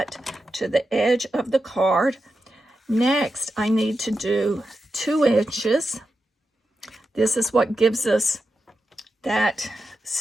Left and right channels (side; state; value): both; normal; correlation 0.89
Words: to the edge of the card. Next, I need to do 2 inches. This is what gives us that